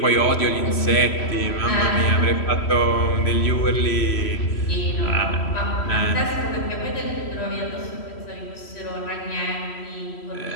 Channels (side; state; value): right; late; 3.1 ms